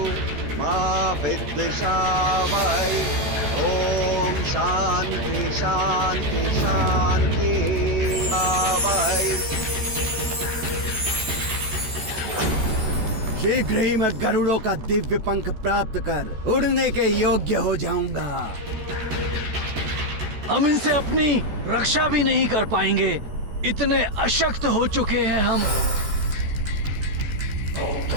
मा विद्विषावहै। ओम शांति शांति शांति आवहै। शीघ्र ही मैं गरुड़ों का दिव्य पंख प्राप्त कर उड़ने के योग्य हो जाऊंगा। हम इनसे अपनी रक्षा भी नहीं कर पाएंगे, इतने अशक्त हो चुके हैं हम।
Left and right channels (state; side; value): late; left; 14 ms